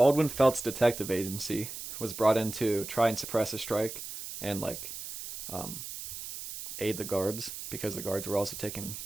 Felts Detective Agency was brought in to try and suppress a strike and like aid the guards, because the guards were also taking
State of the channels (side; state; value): right; noise; hiss, 9 dB below the sound